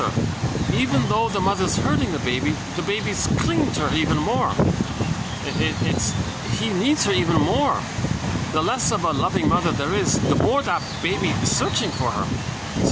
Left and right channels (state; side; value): identical; both; correlation 1.00